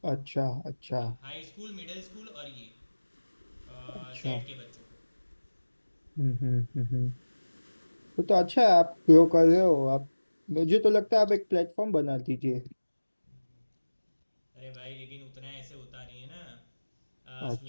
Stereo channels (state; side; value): inverted; both; correlation -1.00